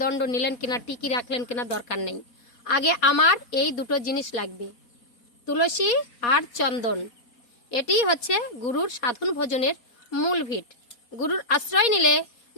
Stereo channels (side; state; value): right; late; 4.2 ms